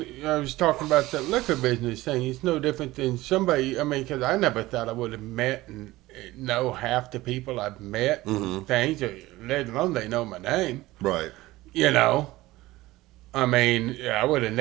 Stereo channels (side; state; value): left; quieter; 18.1 dB